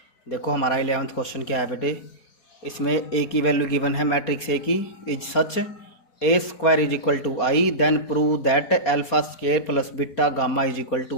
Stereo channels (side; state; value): right; late; 4.3 ms